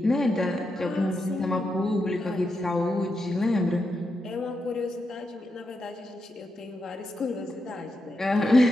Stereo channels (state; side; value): normal; both; correlation 0.85